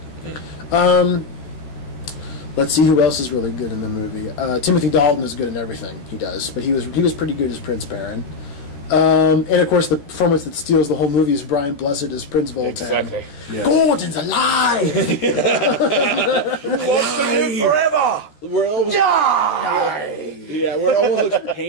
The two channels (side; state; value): right; late; 14 ms